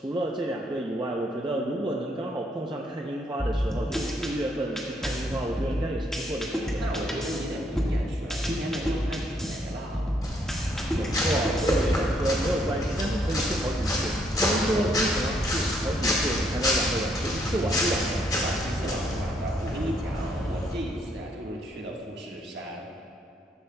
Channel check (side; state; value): both; normal; correlation 0.71